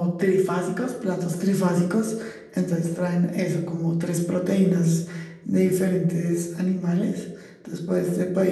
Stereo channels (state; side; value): identical; both; correlation 1.00